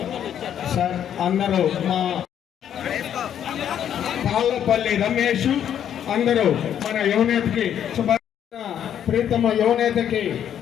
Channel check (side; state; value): right; quieter; 9.6 dB